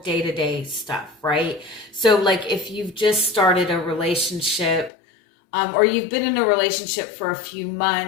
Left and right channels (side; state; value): right; drops out; at 4.9 s